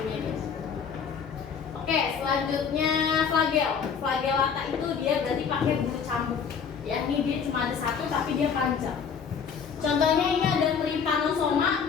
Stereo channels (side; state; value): right; quieter; 6.6 dB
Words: dia. Oke, selanjutnya flagellata itu dia berarti pakai bulu cambuk ya. Ini dia cuma ada satu tapi dia panjang. Contohnya ini ada Trypanosoma